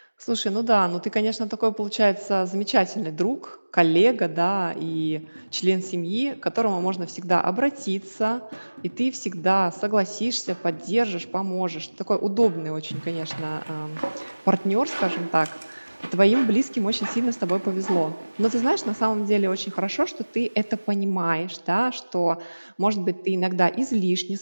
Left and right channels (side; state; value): both; inverted; correlation -1.00